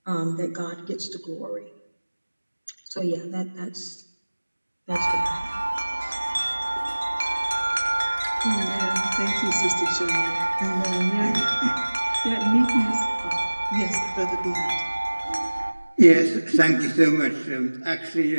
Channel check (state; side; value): inverted; both; correlation -1.00